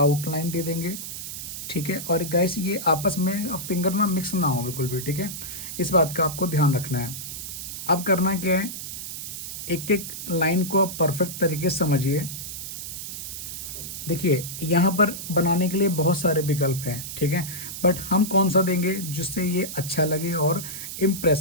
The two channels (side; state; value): right; noise; hiss, 8 dB below the sound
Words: दे देंगे, ठीक है। और गाइस ये आपस में फिंगर ना मिक्स ना हो बिल्कुल भी, ठीक है, इस बात का आपको ध्यान रखना है। अब करना क्या है, एक एक लाइन को आप परफेक्ट तरीके से समझिए। देखिए यहाँ पर बनाने के लिए बहुत सारे विकल्प हैं, ठीक है, बट हम कौन सा देंगे जिससे ये अच्छा लगे और